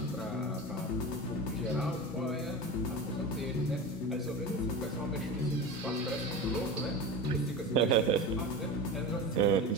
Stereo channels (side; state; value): both; normal; correlation 0.27